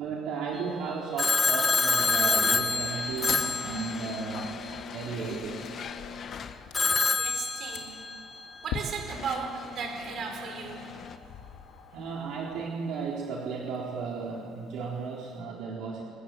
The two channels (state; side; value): normal; both; correlation 0.79